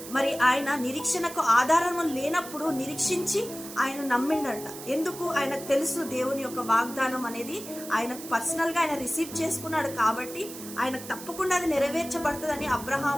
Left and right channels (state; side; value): noise; right; hiss, 13 dB below the sound